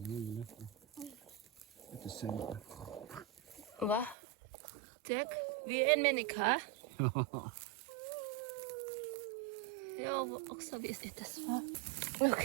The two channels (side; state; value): left; drops out; at 4.2 s